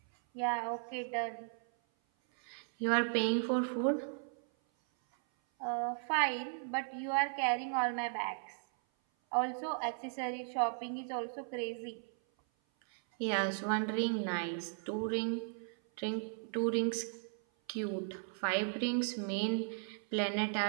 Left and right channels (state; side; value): silent; left; 54 dB below the other